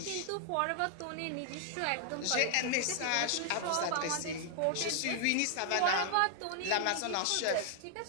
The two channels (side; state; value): both; different; correlation 0.00